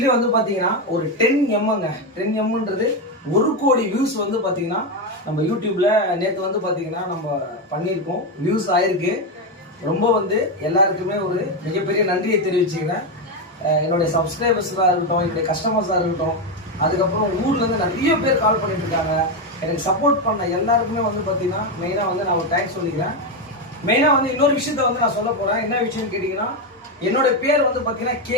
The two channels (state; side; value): normal; both; correlation 0.09